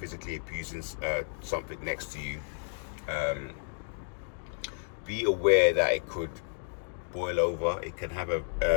abusing something next to you. Be aware that it could boil over. It can have a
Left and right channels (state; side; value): silent; right; digital silence